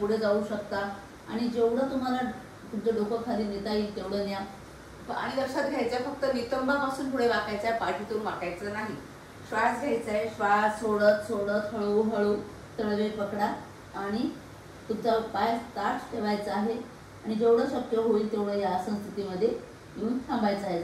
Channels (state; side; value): identical; both; correlation 1.00